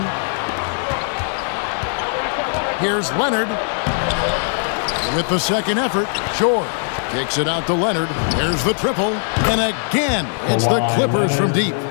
Here's Leonard with the second effort. George kicks it out to Leonard. There's the triple. And again, it's the Clippers from deep.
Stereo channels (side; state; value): right; silent; 57 dB below the other